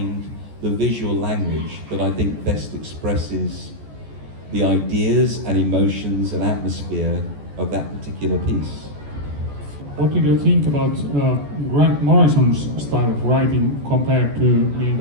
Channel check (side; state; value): left; late; 14 ms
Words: the visual language that I think best expresses the ideas and emotions and atmosphere of that particular piece. What did you think about Grant Morrison's style of writing compared to Neil